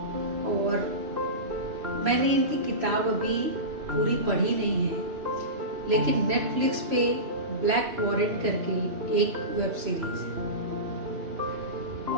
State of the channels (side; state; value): left; late; 3.1 ms